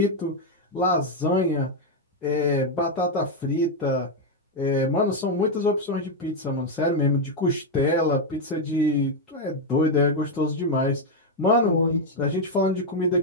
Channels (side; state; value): both; normal; correlation 0.02